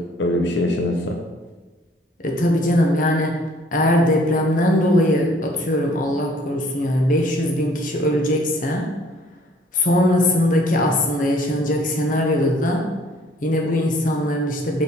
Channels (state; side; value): normal; both; correlation 0.58